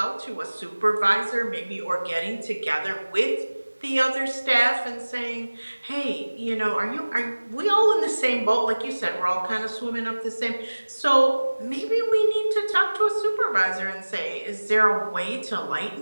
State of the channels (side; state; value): both; inverted; correlation -1.00